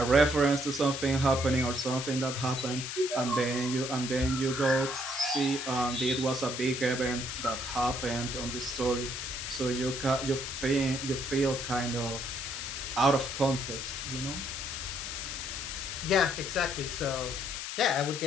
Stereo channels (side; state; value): left; noise; hiss, 5 dB below the sound